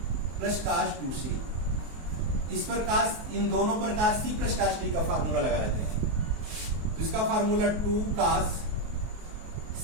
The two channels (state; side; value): late; left; 23 ms